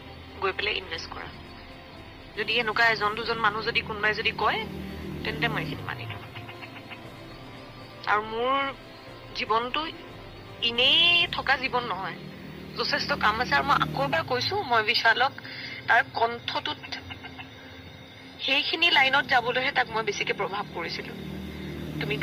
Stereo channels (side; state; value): both; identical; correlation 1.00